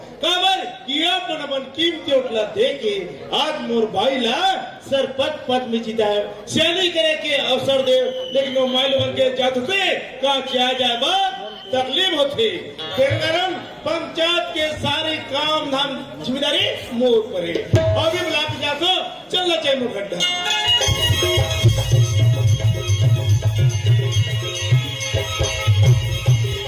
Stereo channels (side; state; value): both; identical; correlation 1.00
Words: काबर किया अपन कीमती उठला दे के आज मोर भाई ला सरपंच पद में जीता है सैनी करे के अवसर दे लेकिन वो माइल बन के जाते का किया जाए बा तकलीफ होती फिर गरम पंचायत के सारे काम धाम जिम्मेदारी मोर पर है अभी बुला के जातो चलना चाहिए मोर गड्ढा